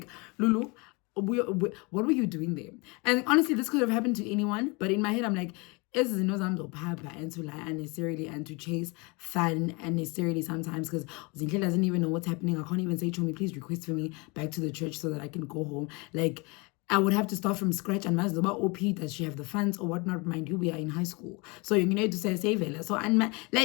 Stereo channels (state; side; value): quieter; right; 28.3 dB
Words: Lulu, what were you doing there? And honestly, this could have happened to anyone, but in my head I'm like, is and to lie unnecessarily and to chase fun unnecessarily sometimes, because Zinhle doesn't even know what's happening. I can't even say, Chomi, please request for me back to the church so that I can go home. Like, I would have to start from scratch. And Mazoba OP, does she have the funds or whatnot? Mind you, we are in high school, so you need to say save it. So and